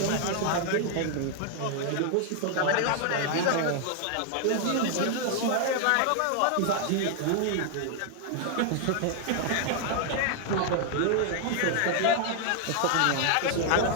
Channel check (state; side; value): different; both; correlation 0.00